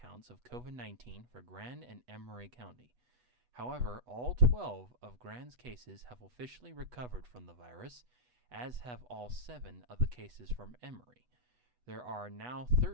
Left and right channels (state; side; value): late; left; 8.1 ms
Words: of COVID-19 for Grand and Emery County. However, all 12 of Grand's cases have officially recovered from the virus, as have all 7 of the cases from Emery. There are now